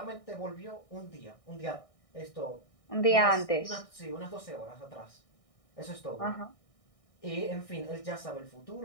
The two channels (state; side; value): late; right; 1.6 ms